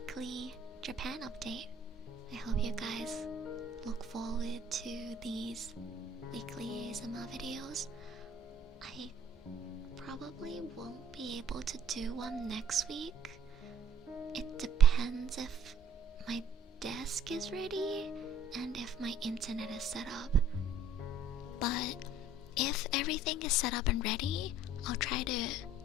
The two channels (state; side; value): normal; both; correlation 0.54